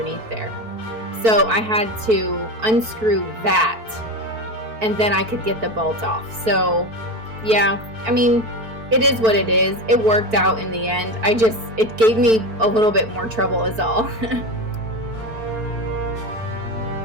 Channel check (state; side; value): late; left; 4.5 ms